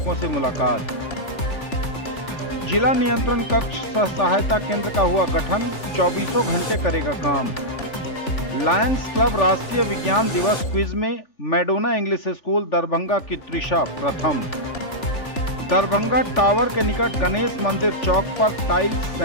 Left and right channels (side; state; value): right; late; 3.4 ms